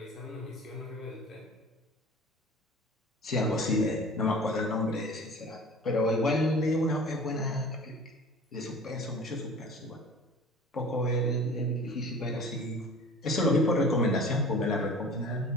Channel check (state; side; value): normal; both; correlation 0.42